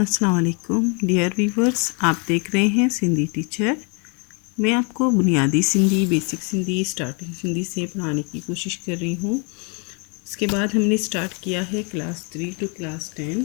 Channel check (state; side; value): quieter; right; 34.7 dB